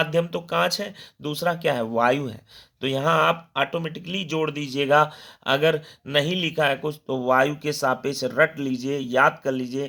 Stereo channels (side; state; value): both; identical; correlation 1.00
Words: तो कांच है, दूसरा क्या है, वायु है। तो यहाँ आप ऑटोमेटिकली जोड़ दीजिएगा। अगर नहीं लिखा है कुछ तो वायु के सापेक्ष रट लीजिए, याद कर